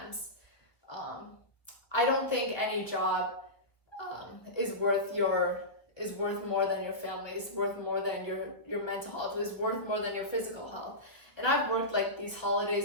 I don't think any job is worth more than your family, is worth more than your mental health, is worth more than your physical health. And I've worked like these holidays,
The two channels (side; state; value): right; late; 1.0 ms